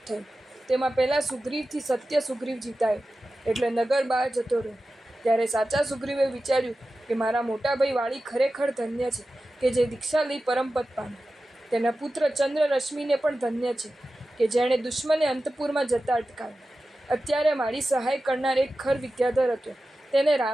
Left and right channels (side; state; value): both; normal; correlation 0.94